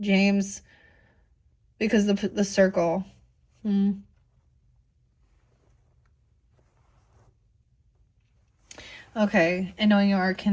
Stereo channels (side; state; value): both; identical; correlation 1.00